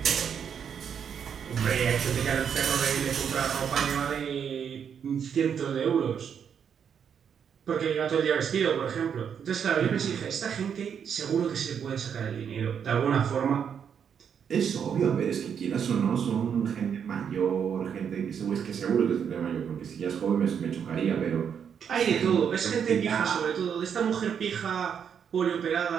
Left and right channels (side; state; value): left; quieter; 7.7 dB